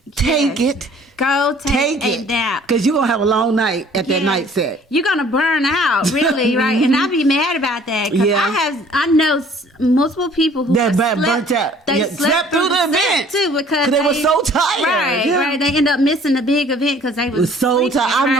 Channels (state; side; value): normal; both; correlation 0.54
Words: take it. Go take a nap. Because you're going to have a long night at that night set. You're going to burn out, really, right? And I'll be mad about that. Because I know multiple people who burnt out. They slept through the event too because they were so tired. Right. They end up missing the big event because they was so tired. I